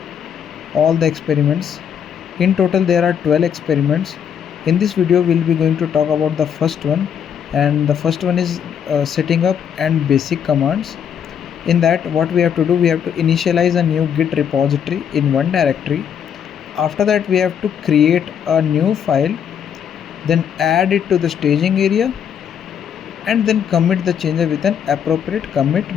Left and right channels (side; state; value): right; quieter; 8.2 dB